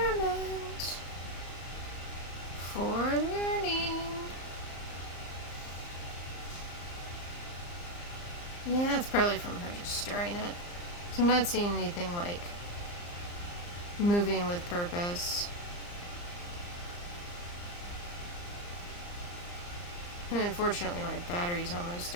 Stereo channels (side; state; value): right; late; 34 ms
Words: for learning. Yeah, it's probably from her just stirring it. So I'm not seeing anything like moving with purpose. And unfortunately, my battery's almost